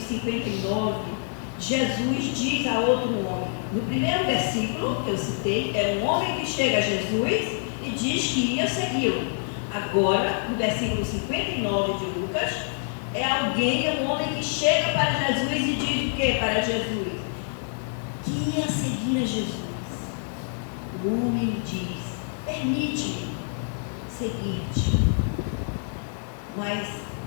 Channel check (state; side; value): silent; right; digital silence